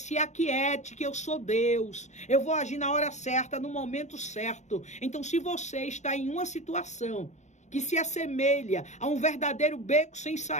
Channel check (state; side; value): late; right; 0.34 ms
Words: aquiete, que eu sou Deus, eu vou agir na hora certa, no momento certo. Então, se você está em uma situação que se assemelha a um verdadeiro beco sem